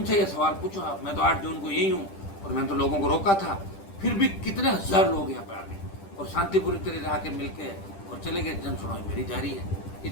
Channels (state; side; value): late; right; 10 ms